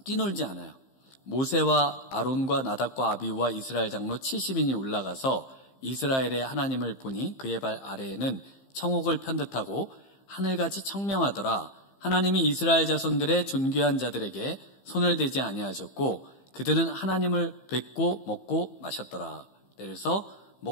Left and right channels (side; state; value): right; late; 15 ms